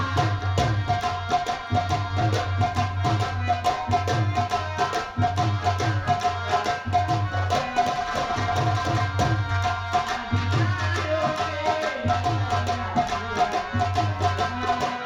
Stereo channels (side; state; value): both; identical; correlation 1.00